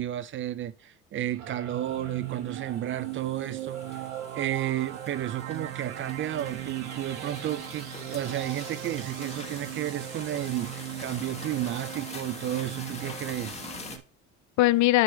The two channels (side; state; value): both; normal; correlation 0.03